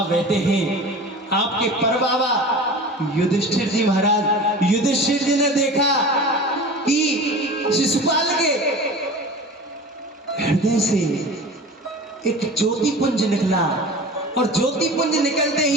बैठे हैं आपके परबाबा युधिष्ठिर जी महाराज। युधिष्ठिर जी ने देखा कि शिशुपाल के हृदय से एक ज्योति पुंज निकला और ज्योति पुंज निकलते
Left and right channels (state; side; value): normal; both; correlation 0.36